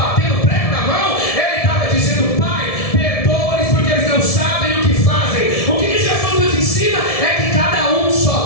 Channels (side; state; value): right; late; 1.7 ms